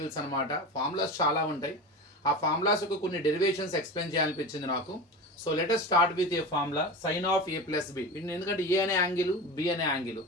అనమాట, ఫార్ములాస్ చాలా ఉంటాయి. ఆ ఫార్ములాస్కు కొన్ని డెరివేషన్స్ ఎక్స్ప్లెయిన్ చేయాలనిపించింది నాకు. So let us start with a formula sine of A plus B. ఎందుకంటే ఏ అనే యాంగిల్, బి అనే యాంగిల్,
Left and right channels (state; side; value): normal; both; correlation 0.27